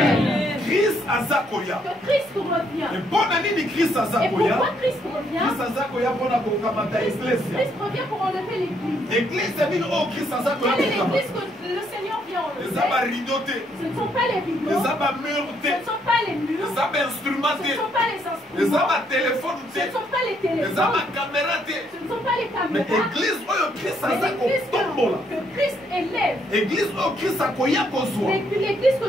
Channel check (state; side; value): normal; both; correlation 0.72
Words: Christ azakoya. Que Christ revient. Et bonne année de Christ Et azakoya. pourquoi Christ revient? Christ azakoya pour la kokamata église. Christ revient pour enlever l'église. Église c'est bien oh Christ azakoya. Quelle est l'église que le Seigneur vient enlever? Les abats ridotés. Ce ne sont pas les rideaux. Les abats Ce murtés. ne sont pas les murs. Les abats Ce instrumentés. ne sont pas les Les instruments. abats téléphones. Ce ne sont pas les Les téléphones. abats camératés. Ce ne sont pas les Mais caméras. église oh Christ Mais azakoya l'église tombola. que Christ élève. Église oh Christ akoya kozwa. L'église que